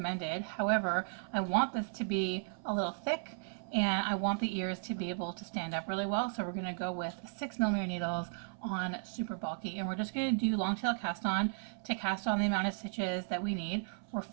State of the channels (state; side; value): silent; left; 54 dB below the other